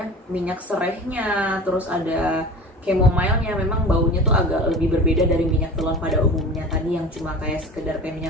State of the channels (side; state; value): both; normal; correlation 0.37